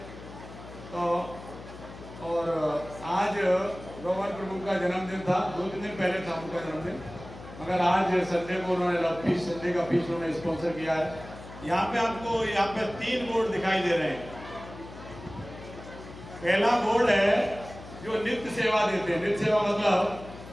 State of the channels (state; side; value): noise; left; hum, 15 dB below the sound